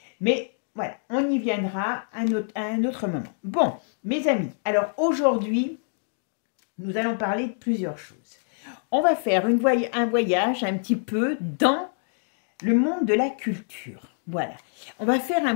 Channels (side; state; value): right; silent; 61 dB below the other